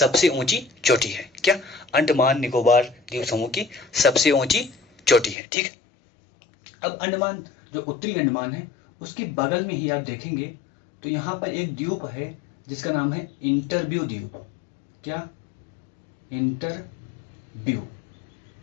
ऊंची चोटी है। क्या? अंडमान निकोबार द्वीप समूह की सबसे ऊंची चोटी है, ठीक है। अब अंडमान जो उत्तरी अंडमान है उसके बगल में ही आप देखेंगे तो यहां पर एक द्वीप है जिसका नाम है इंटरव्यू द्वीप। क्या? इंटरव्यू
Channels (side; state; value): right; drops out; at 5.4 s